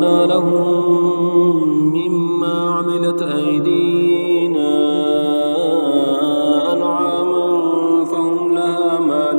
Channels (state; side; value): inverted; both; correlation -1.00